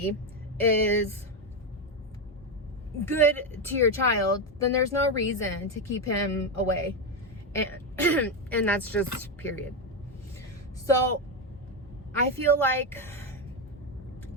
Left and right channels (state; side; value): normal; both; correlation 0.09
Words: is good to your child, then there's no reason to keep him away. And and that's just period. So I feel like